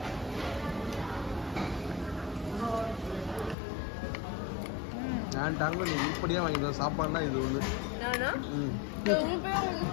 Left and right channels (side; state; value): right; drops out; at 3.6 s